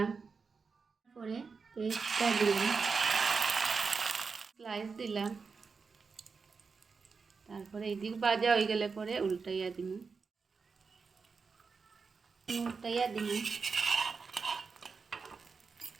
তারপরে পেস্টটা দিলাম, স্লাইস দিলাম, তারপরে এইদিক ভাজা হয়ে গেলে পরে উল্টাইয়া দিব।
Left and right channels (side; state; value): left; quieter; 5.0 dB